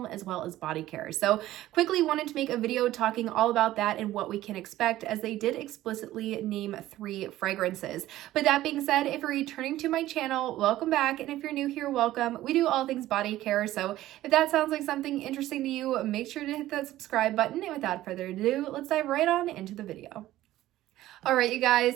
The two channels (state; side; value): quieter; left; 14.9 dB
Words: as well as body care. So quickly wanted to make a video talking all about that and what we can expect, as they did explicitly name 3 fragrances. But that being said, if you're returning to my channel, welcome back, and if you're new here, welcome. We do all things body care, so if that sounds like something interesting to you, make sure to hit that subscribe button, and without further ado, let's dive right on into the video. Alright, you guys,